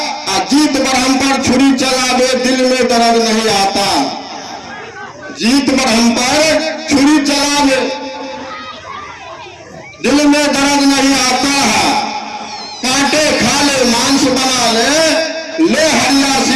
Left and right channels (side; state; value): both; identical; correlation 1.00